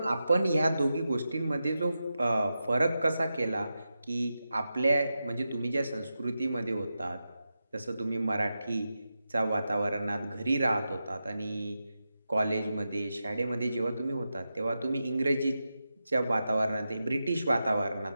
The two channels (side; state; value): both; inverted; correlation -0.90